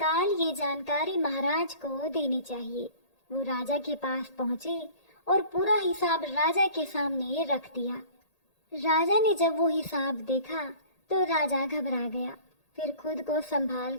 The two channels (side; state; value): right; late; 1.8 ms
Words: ये जानकारी महाराज को देनी चाहिए। वो राजा के पास पहुंचे और पूरा हिसाब राजा के सामने रख दिया। राजा ने जब वो हिसाब देखा तो राजा घबरा गया। फिर खुद को संभाल